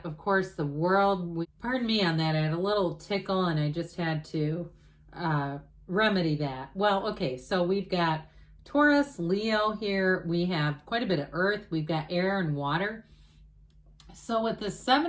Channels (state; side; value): identical; both; correlation 1.00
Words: of course, the World. Pardon me on that. I had a little tickle and I just had to remedy that. Well, okay, so we've got Taurus, Leo here. We have quite a bit of earth. We've got air and water. So with the